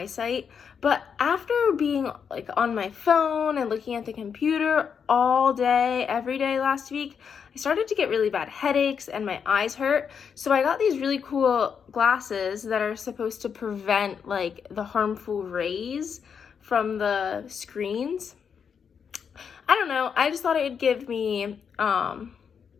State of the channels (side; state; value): right; quieter; 6.8 dB